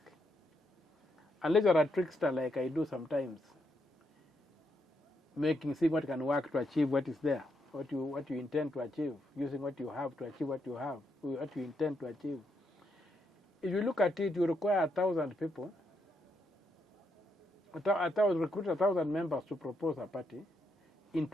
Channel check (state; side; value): normal; both; correlation 0.79